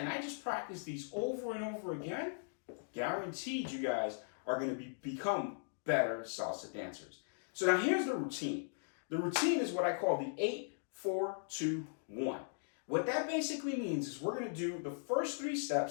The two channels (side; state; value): right; silent; digital silence